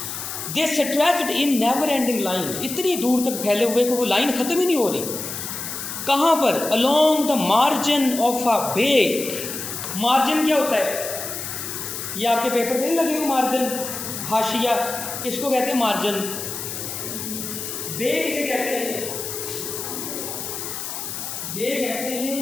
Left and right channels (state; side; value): noise; left; hiss, 6 dB below the sound